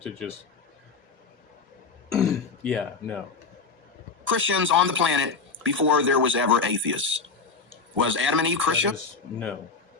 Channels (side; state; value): right; quieter; 4.8 dB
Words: to just yeah, no. Christians on the planet before there was ever atheists. Was Adam and Eve Christian? No.